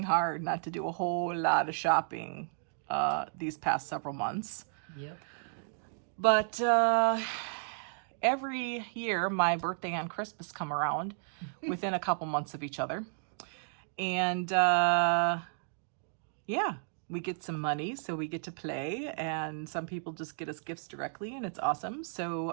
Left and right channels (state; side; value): silent; left; digital silence